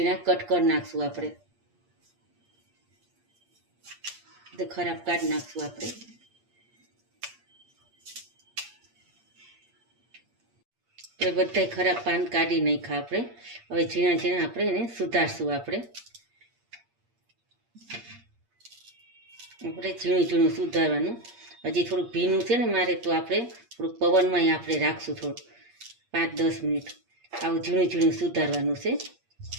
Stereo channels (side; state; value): left; late; 8.5 ms